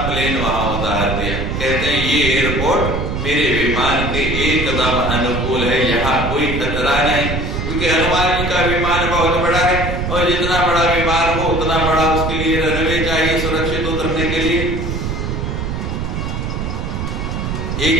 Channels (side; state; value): right; noise; rumble, 3 dB below the sound